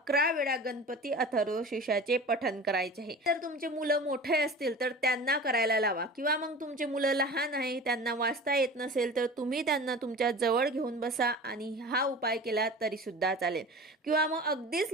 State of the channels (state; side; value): normal; both; correlation 0.37